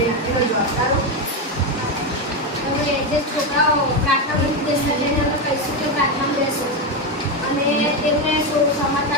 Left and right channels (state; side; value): normal; both; correlation 0.10